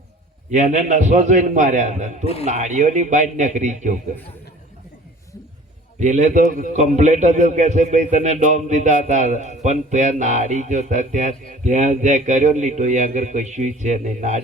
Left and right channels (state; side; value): normal; both; correlation 0.46